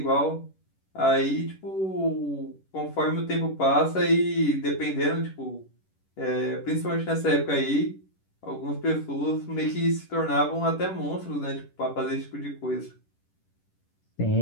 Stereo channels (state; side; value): late; right; 10 ms